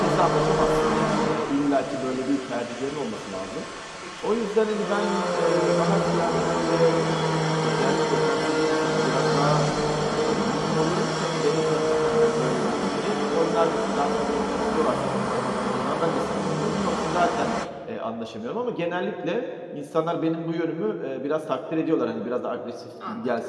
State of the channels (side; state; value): both; identical; correlation 1.00